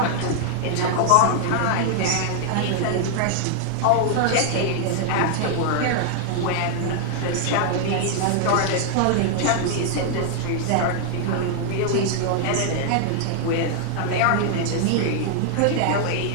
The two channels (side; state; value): both; different; correlation 0.00